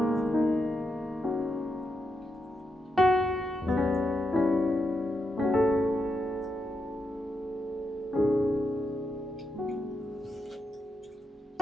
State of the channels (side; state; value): both; normal; correlation 0.84